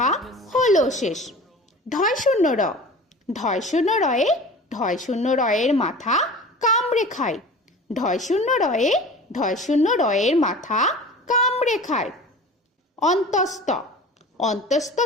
হলো শেষ। ঢয় শূন্য র ঢয় শূন্য রয়ে ঢয় শূন্য রয়ের মাথা কামড়ে খায়। ঢয় শূন্য রয়ে ঢয় শূন্য রয়ের মাথা কামড়ে খায়। অন্তস্থ অন্তস্থ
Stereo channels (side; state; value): both; normal; correlation 0.38